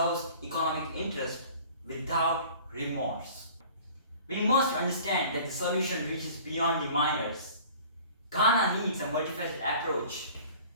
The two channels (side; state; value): both; inverted; correlation -0.47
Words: economic interest without remorse? We must understand that the solution reaches beyond the miners. Ghana needs a multifaceted approach.